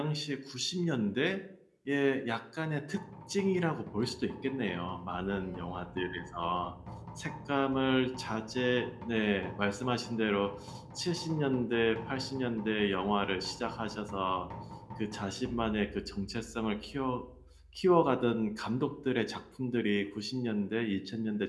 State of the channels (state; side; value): identical; both; correlation 1.00